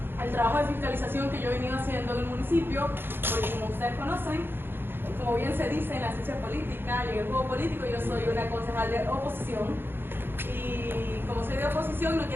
el trabajo de fiscalización que yo he venido haciendo en el municipio, porque como ustedes conocen, como bien se dice en la ciencia política y en el juego político, yo soy una concejal de oposición, y como soy de oposición no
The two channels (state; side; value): late; left; 0.10 ms